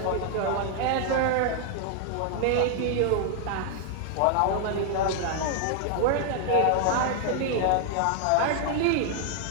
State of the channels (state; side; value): different; both; correlation 0.00